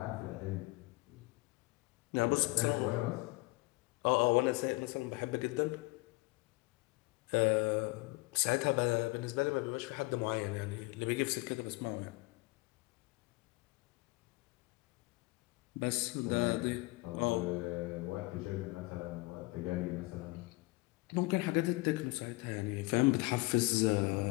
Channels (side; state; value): right; quieter; 23.9 dB